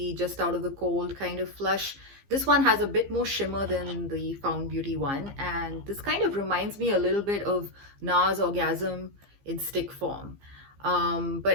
just out of the cold kind of flush. This one has a bit more shimmer than the Found Beauty one, and this kind of reminds me a little bit of NARS Orgasm in stick form.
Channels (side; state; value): left; late; 15 ms